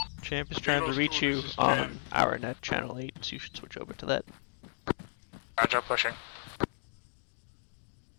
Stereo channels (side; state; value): right; silent; digital silence